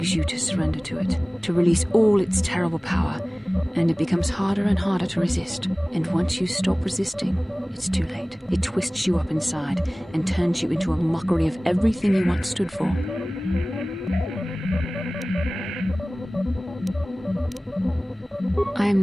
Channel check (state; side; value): normal; both; correlation 0.98